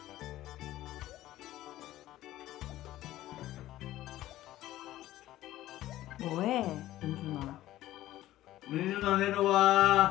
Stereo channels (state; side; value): quieter; right; 14.9 dB